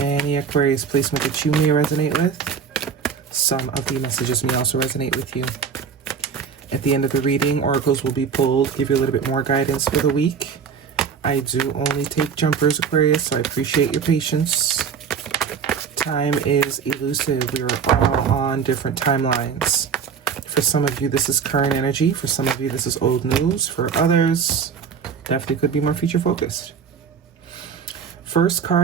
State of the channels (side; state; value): left; quieter; 6.7 dB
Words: Aquarius placement that you may resonate with, some of the messages may also resonate with you. At the end of the reading, oracles will be pulled, give you a little bit more guidance for the week. I do only take jumpers, Aquarius, so I appreciate your patience. Time is elusive. We are all on different timelines. For some of you, this is current energy. For some of you, this is old news. For others, definitely could be more future focused. First